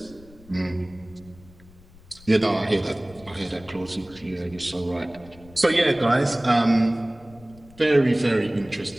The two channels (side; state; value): left; noise; rumble, 23 dB below the sound